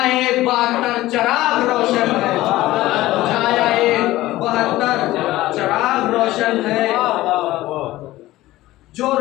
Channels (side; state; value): right; quieter; 16.8 dB